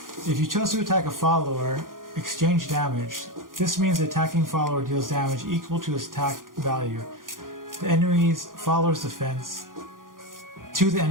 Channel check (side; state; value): left; late; 0.90 ms